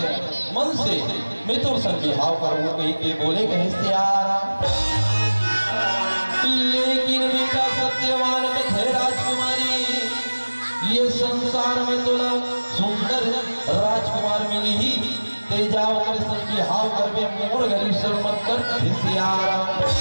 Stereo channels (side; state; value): both; inverted; correlation -1.00